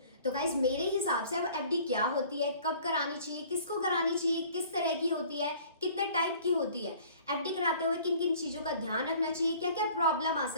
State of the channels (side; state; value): both; inverted; correlation -0.51